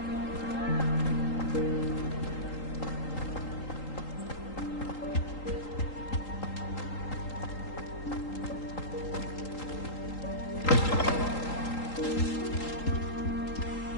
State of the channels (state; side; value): late; right; 3.8 ms